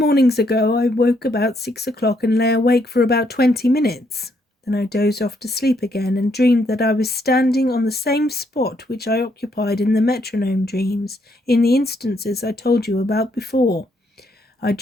ago I woke about 6 o'clock and lay awake for about 20 minutes. Then I dozed off to sleep again and dreamed that I was standing on the same spot which I occupied in the metronome dreams, in the instances I told you about before. I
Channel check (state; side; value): normal; both; correlation 0.73